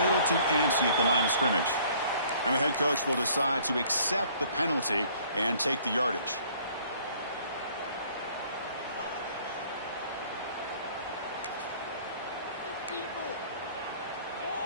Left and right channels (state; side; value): inverted; both; correlation -0.56